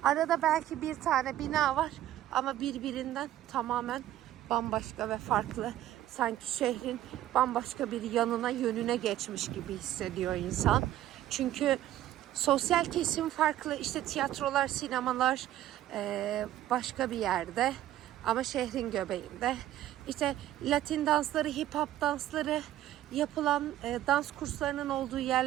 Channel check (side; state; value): left; quieter; 13.2 dB